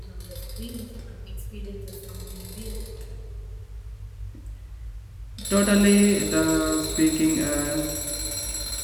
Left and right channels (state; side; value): identical; both; correlation 1.00